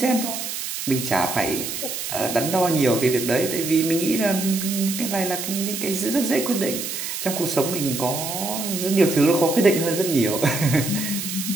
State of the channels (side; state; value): right; noise; hiss, 5 dB below the sound